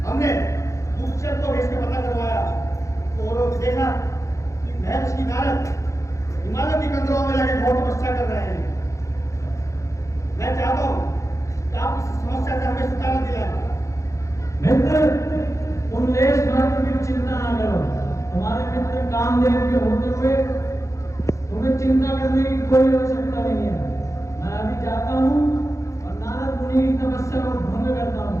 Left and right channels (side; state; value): right; late; 0.15 ms